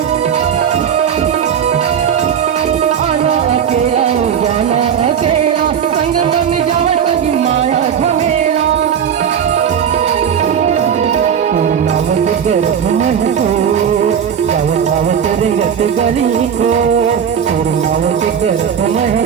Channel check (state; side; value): quieter; left; 8.1 dB